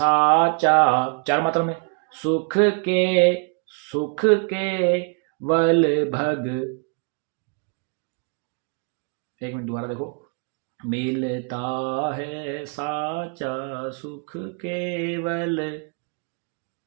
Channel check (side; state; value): left; quieter; 38.1 dB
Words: 4 मात्रा में, सुख के वल भग। एक मिनट दोबारा देखो, मिलता है साचा सुख केवल,